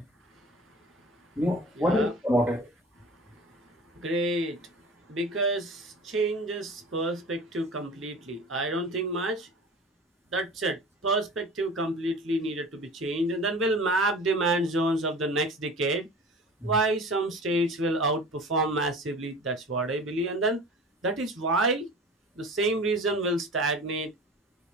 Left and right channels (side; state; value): both; normal; correlation 0.39